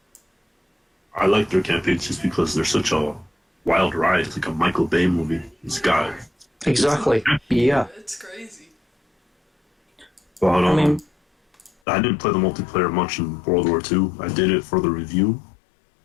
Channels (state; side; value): drops out; right; at 11.7 s